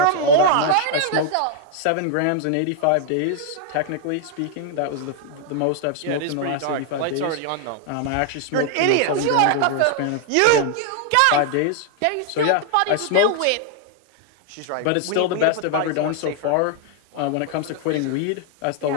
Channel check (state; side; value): different; both; correlation 0.00